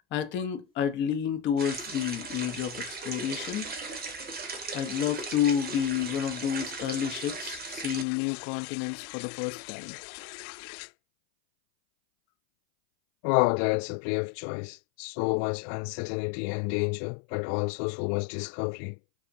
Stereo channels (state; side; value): drops out; right; at 8.1 s